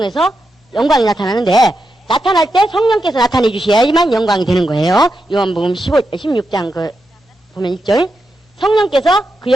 영광이 나타나는데, 나타날 때 성령께서 나타내 주셔야지만 영광이 되는 거예요. 요한복음 16장 보면 1절. 성령께서 그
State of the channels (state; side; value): normal; both; correlation 0.86